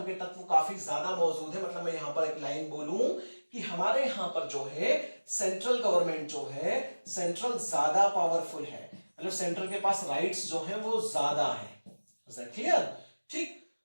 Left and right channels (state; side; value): inverted; both; correlation -1.00